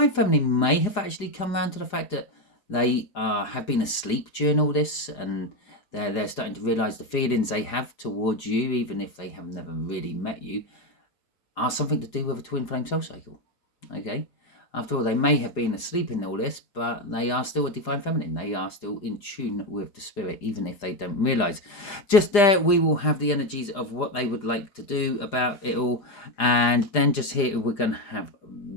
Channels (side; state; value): right; late; 4.9 ms